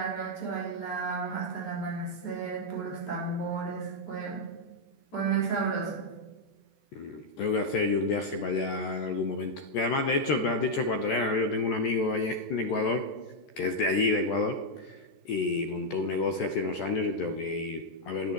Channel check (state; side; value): late; right; 14 ms